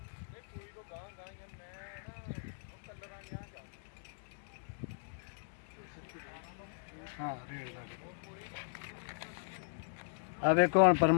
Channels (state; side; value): silent; right; digital silence